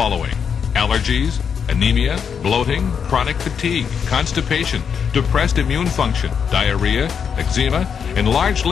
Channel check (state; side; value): quieter; right; 7.0 dB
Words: Allergies, anemia, bloating, chronic fatigue, constipation, depressed immune function, diarrhea, eczema, enlarged